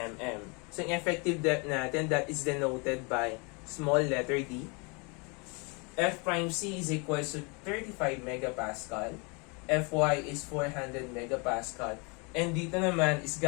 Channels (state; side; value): quieter; right; 31.6 dB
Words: So yung effective depth natin, that is denoted by small letter d. F prime C is equal to 35 megapascal. Fy is 400 megapascal. And dito naman is